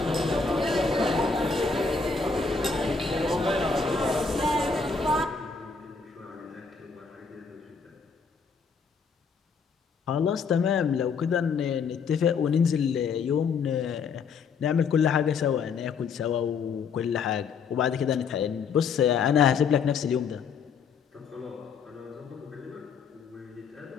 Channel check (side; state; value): right; quieter; 5.4 dB